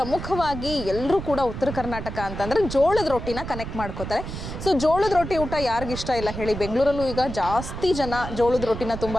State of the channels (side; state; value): right; noise; rumble, 8 dB below the sound